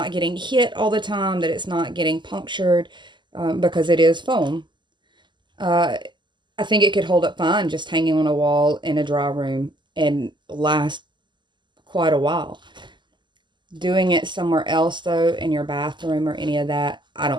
getting hit all the time, that it's not getting punctured, because it is foam. I think it could hold up fine just hanging on a wall in a dry room and last quite a while. Doing it somewhere else, though, in your bathroom or any of that, I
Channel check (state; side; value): late; left; 0.22 ms